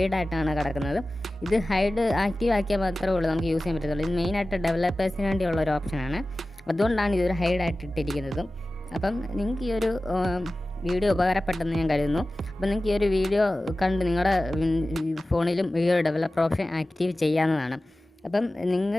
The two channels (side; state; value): both; normal; correlation 0.96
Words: കിടക്കുന്നത്. ഇത് ആക്റ്റീവ് ആക്കിയാൽ മാത്രമേ ഉള്ളൂ നമുക്ക് യൂസ് ചെയ്യാൻ പറ്റത്തുള്ളൂ. ഇത് മെയിനായിട്ട് ഡെവലപ്പേഴ്സിന് വേണ്ടിയുള്ള ഒരു ഓപ്ഷനാണ്, അതുകൊണ്ടാണ് ഇതൊരു ഹൈഡായിട്ട് ഇട്ടിരിക്കുന്നതും. അപ്പം നിങ്ങൾക്ക് ഈ ഒരു വീഡിയോ ഉപകാരപ്പെട്ടെന്ന് ഞാൻ കരുതുന്നു. അപ്പം നിങ്ങൾക്ക് ഈ ഒരു വീഡിയോ കണ്ട് നിങ്ങളുടെ ഫോണിലും ഈ ഒരു ഡെവലപ്പർ ഓപ്ഷൻ ആക്റ്റീവ് ചെയ്യാവുന്നതാണ്. അപ്പം